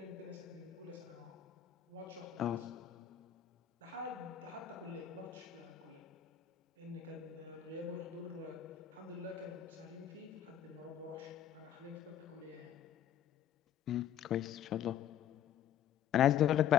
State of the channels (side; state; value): right; quieter; 10.2 dB